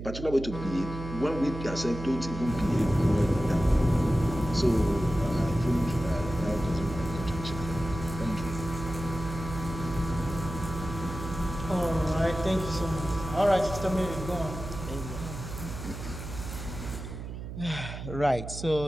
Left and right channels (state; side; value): noise; right; hum, 9 dB below the sound